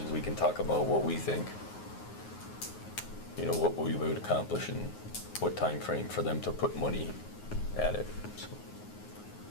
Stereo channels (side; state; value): right; late; 9.5 ms